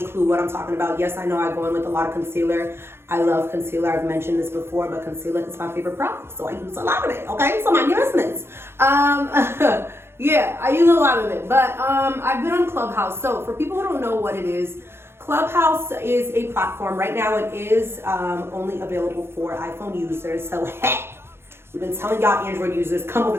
clue what I'm talking about. Yes, I know I go in with a lot of concealer. I love concealer. I've mentioned this before, but concealer is my favorite product, so I use a lot of it, okay? So my business. Yeah, I use a lot of it, but I've been on Clubhouse. So for people who don't know what it is, Clubhouse is a platform. Right now it is only available for iPhone users. So hey, we've been telling y'all Android users, come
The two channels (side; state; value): left; late; 0.12 ms